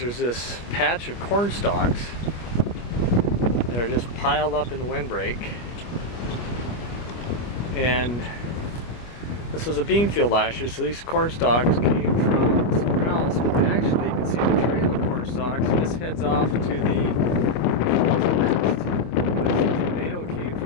this patch of corn stalks that are just piled up in the windbreak. And this was a bean field last year, so these corn stalks came from somewhere else, but they actually, you can see the trail of corn stalks, and this heads off to the northwest. But the tornado came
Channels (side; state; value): right; late; 25 ms